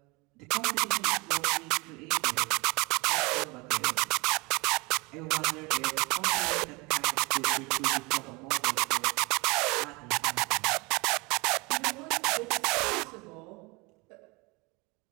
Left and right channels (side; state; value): left; quieter; 26.0 dB